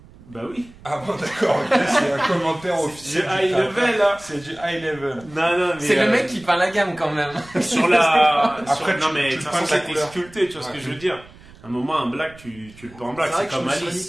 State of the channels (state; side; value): noise; right; rumble, 22 dB below the sound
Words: Bah oui. Ah bon, d'accord, ok, c'est un commentaire officiel. C'est high level, là. C'est du high level. Non, mais. C'est le mec qui peint la gamme quand même. Sur la. Après, non, mais de toute façon, c'est c'était sculpté, tu vois ce que je veux dire. À un moment, un black, tu le peins en black, c'est comme Alice. Alice.